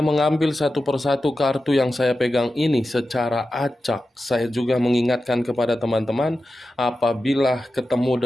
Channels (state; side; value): normal; both; correlation 0.92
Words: mengambil satu persatu kartu yang saya pegang ini secara acak, saya juga mengingatkan kepada teman-teman apabila ketemu